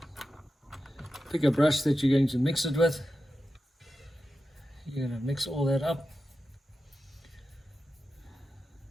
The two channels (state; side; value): normal; both; correlation 0.92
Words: pick a brush that you're going to mix it with. You're going to mix all that up.